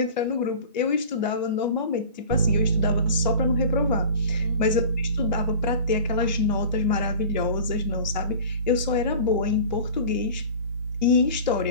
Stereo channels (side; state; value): both; inverted; correlation -0.38